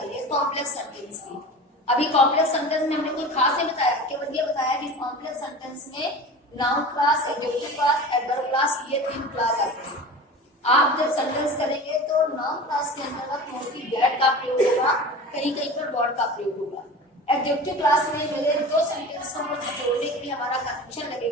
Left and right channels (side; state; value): both; normal; correlation 0.34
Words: है कॉम्प्लेक्स सेंटेंस की। अभी कॉम्प्लेक्स सेंटेंस में हमने कोई खास नहीं बताया, केवल ये बताया कि कॉम्प्लेक्स सेंटेंस में noun class, adjective class, adverb class, ये 3 क्लास आते हैं। आप जब सेंटेंस करेंगे तो नाउन क्लास के अंतर्गत मोस्टली दैट का प्रयोग होगा, कहीं कहीं पर व्हाट का प्रयोग होगा। एडजेक्टिव क्लास में मेरे 2 सेंटेंसों को जोड़ने के लिए हमारा कंजंक्शन